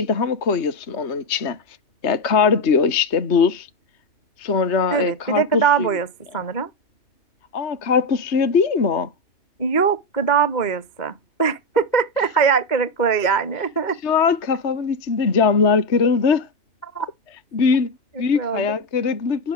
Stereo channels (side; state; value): right; late; 3.2 ms